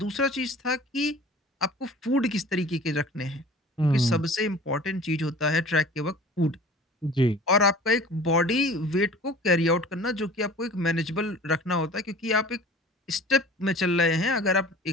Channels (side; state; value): both; normal; correlation 0.43